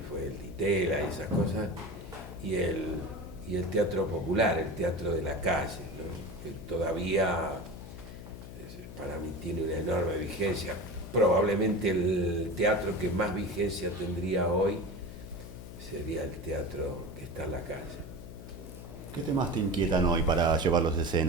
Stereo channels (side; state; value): left; noise; hum, 13 dB below the sound